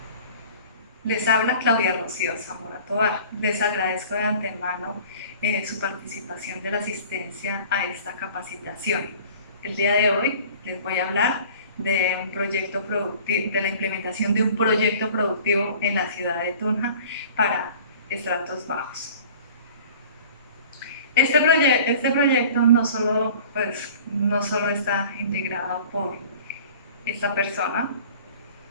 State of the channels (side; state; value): both; inverted; correlation -0.46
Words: Les habla Claudia Rocío Zamora Tovar. Les agradezco de antemano su participación de la asistencia a esta capacitación. El día de hoy les voy a hablar de un proyecto productivo, de la implementación de un proyecto productivo en la ciudad de Tunja para estratos bajos. Este proyecto no solo está integrado por esta persona,